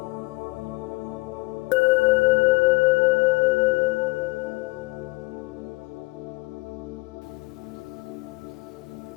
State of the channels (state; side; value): quieter; right; 23.5 dB